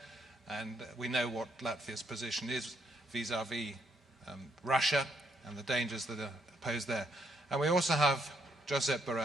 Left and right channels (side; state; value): both; normal; correlation 0.74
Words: and we know what Latvia's position is vis-à-vis Russia and the dangers that are posed there. And we also have Josep